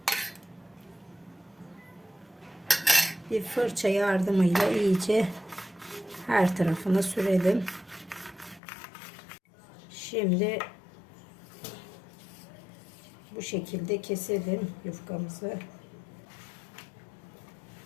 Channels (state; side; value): drops out; right; at 8.6 s